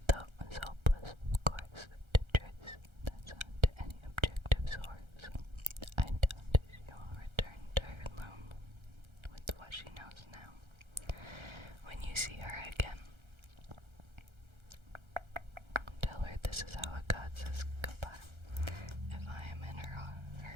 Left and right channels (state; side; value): late; left; 1.3 ms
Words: Though it was hopeless, of course, to trace that sound to any objective source, I doubt she will return to her loom with what she knows now. When you see her